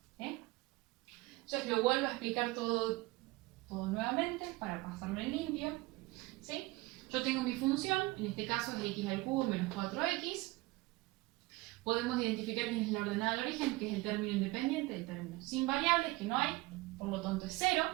Entonces lo vuelvo a explicar todo nuevamente para pasarlo en limpio. ¿Sí? Yo tengo mi función, en este caso es x al cubo menos 4x. Podemos identificar quién es la ordenada al origen, que es el término independiente, el término sin variables, que no hay, por lo tanto es 0.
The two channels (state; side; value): quieter; left; 21.3 dB